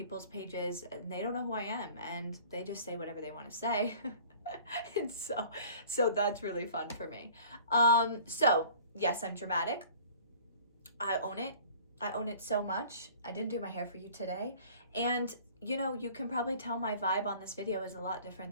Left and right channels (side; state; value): both; inverted; correlation -0.48